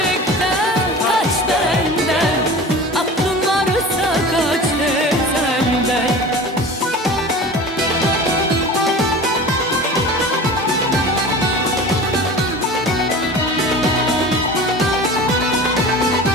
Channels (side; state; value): both; normal; correlation 0.36